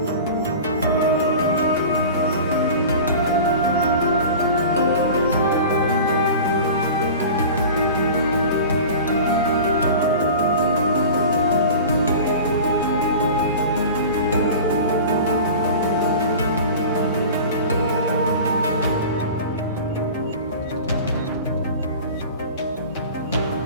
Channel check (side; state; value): both; inverted; correlation -0.36